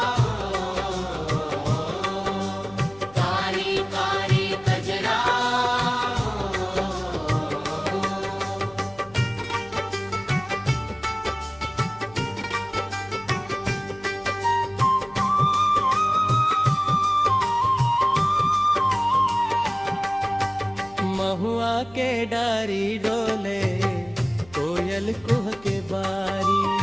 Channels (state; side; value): noise; left; hum, 24 dB below the sound